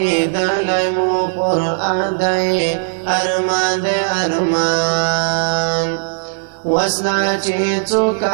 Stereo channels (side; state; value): left; silent; 67 dB below the other